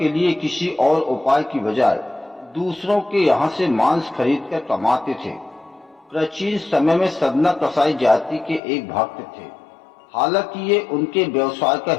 लिए किसी और उपाय की बजाय दूसरों के यहाँ से मांस खरीदकर कमाते थे। प्राचीन समय में सदना कसाई जाति के एक भक्त थे। हालांकि ये उनके व्यवसाय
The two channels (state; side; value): drops out; right; at 8.6 s